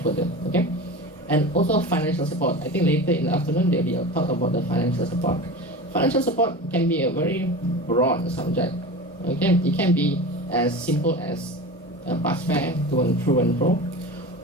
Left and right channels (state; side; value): normal; both; correlation 0.31